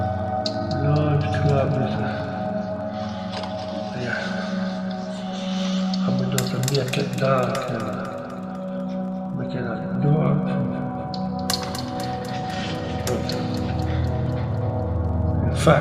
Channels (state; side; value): identical; both; correlation 1.00